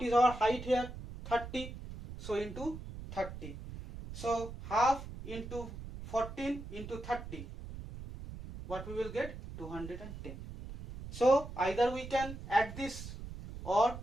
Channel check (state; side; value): noise; right; rumble, 11 dB below the sound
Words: is our height here? 30. So into 30. So half into 14 into 30. What we will get? 210. So either we can add this or